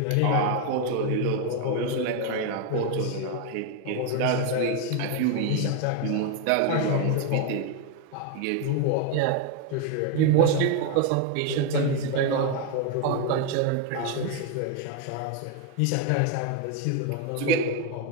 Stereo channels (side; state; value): both; different; correlation 0.01